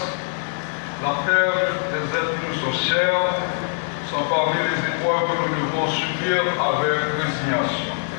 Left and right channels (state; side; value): silent; right; digital silence